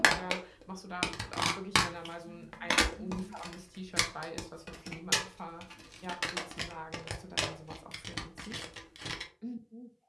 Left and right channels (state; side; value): identical; both; correlation 1.00